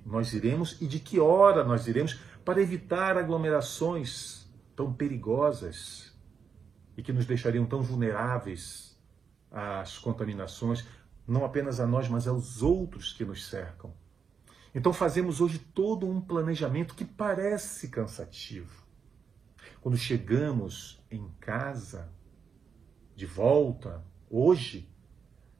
nós iremos e de que hora nós iremos para evitar aglomerações tão perigosas e que nos deixariam tão vulneráveis às contaminações, não apenas a nós, mas aos outros que nos cercam. Então fazemos hoje todo um planejamento que parece cansativo. Quando chegamos em casa, de volta, hoje,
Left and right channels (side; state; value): left; quieter; 6.3 dB